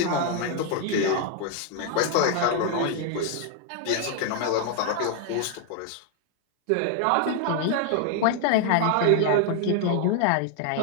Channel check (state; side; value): different; both; correlation 0.00